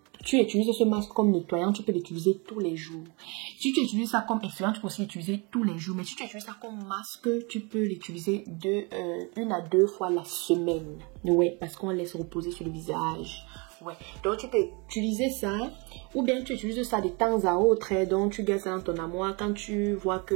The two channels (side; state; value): left; quieter; 30.2 dB